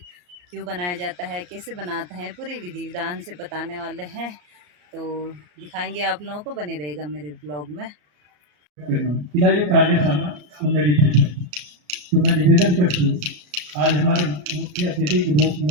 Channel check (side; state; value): left; late; 34 ms